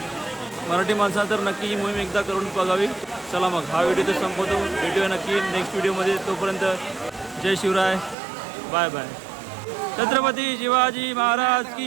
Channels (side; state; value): left; drops out; at 8.2 s